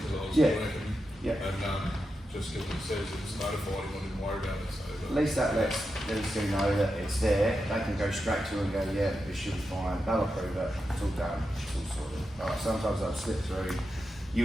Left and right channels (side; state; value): both; normal; correlation 0.88